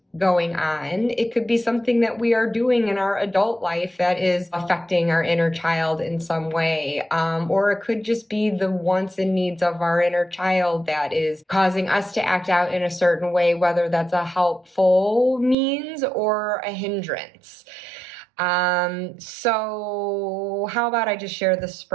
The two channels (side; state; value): left; drops out; at 15.6 s